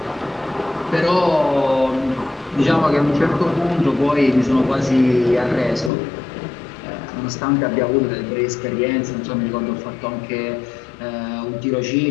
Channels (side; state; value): right; drops out; at 5.9 s